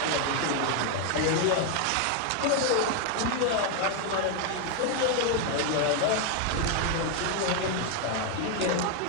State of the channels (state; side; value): different; both; correlation 0.00